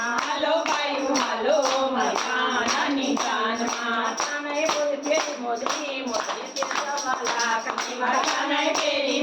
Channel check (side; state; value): both; identical; correlation 1.00